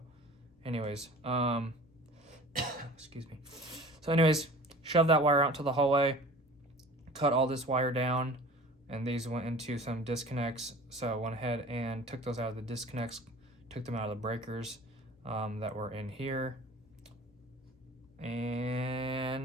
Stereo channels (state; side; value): normal; both; correlation 0.43